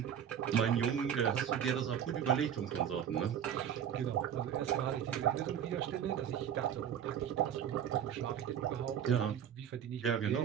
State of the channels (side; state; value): left; quieter; 9.1 dB